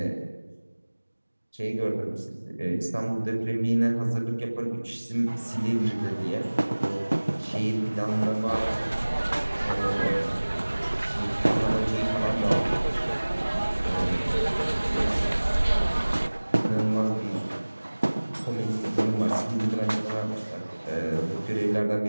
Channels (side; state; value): both; inverted; correlation -1.00